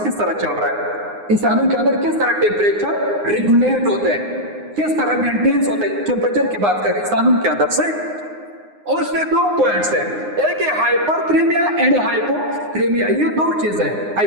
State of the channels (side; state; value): left; late; 9.7 ms